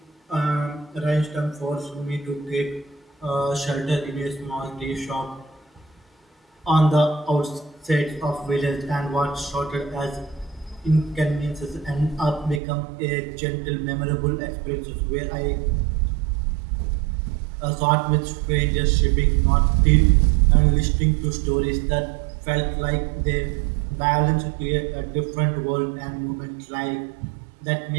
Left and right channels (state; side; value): drops out; left; at 12.6 s